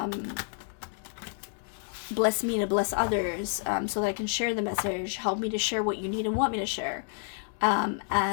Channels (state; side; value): silent; right; 58 dB below the other